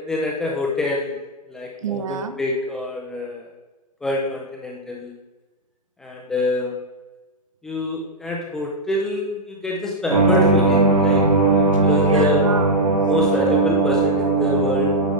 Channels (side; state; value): both; normal; correlation -0.05